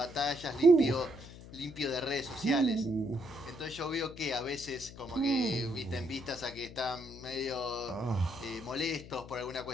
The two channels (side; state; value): left; noise; hum, 16 dB below the sound